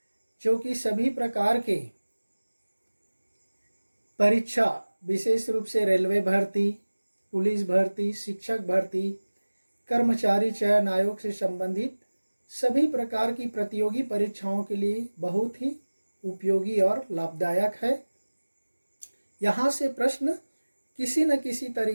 जो कि सभी प्रकार के परीक्षा, विशेष रूप से रेलवे भर्ती, पुलिस भर्ती, शिक्षक भर्ती, कर्मचारी चयन आयोग से संबंधित सभी प्रकार की प्रतियोगी परीक्षाओं के लिए बहुत ही उपयोगी और लाभदायक है। यहाँ से प्रश्न किसी न किसी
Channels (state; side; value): inverted; both; correlation -1.00